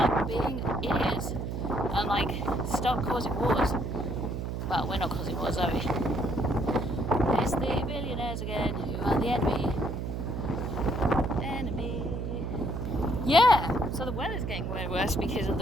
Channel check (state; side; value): noise; right; hum, 3 dB below the sound